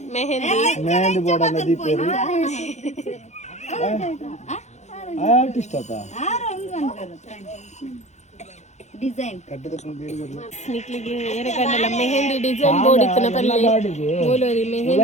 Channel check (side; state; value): right; late; 0.33 ms